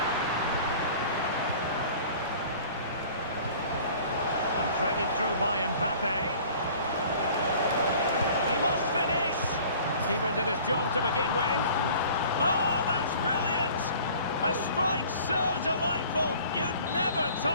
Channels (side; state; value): both; inverted; correlation -0.48